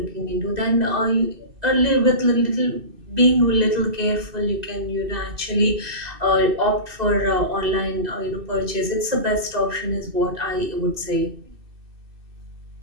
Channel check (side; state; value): left; late; 2.6 ms